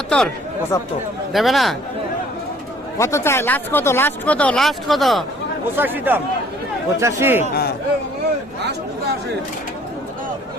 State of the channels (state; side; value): normal; both; correlation 0.57